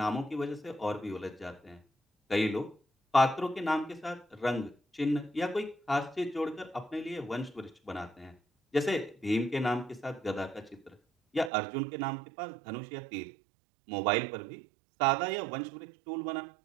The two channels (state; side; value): drops out; left; at 11.5 s